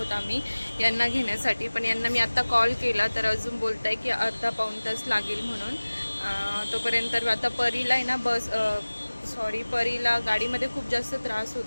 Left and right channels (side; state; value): both; inverted; correlation -1.00